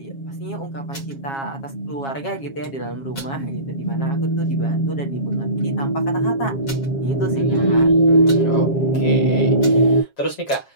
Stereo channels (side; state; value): right; late; 7.3 ms